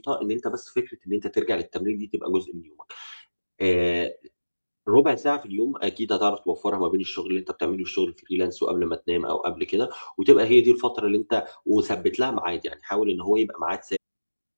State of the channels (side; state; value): both; inverted; correlation -1.00